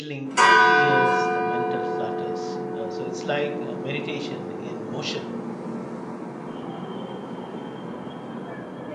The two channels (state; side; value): identical; both; correlation 1.00